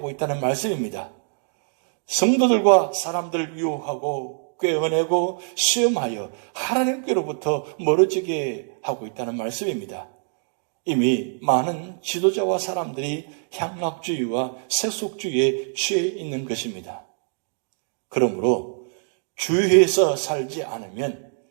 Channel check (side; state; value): left; silent; 63 dB below the other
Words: 있다는 말씀입니다. 성도들과 사람들을 유혹하고 꿰어내고 시험하여 하나님께로부터 멀어지게 하고 있다는 말씀입니다. 이미 많은 지도자와 사람들이 향락주의와 세속주의에 취해 있는 것입니다. 그러므로 주의해서 살지 않으면